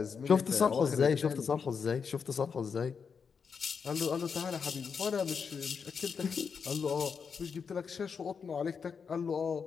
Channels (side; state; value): right; quieter; 6.1 dB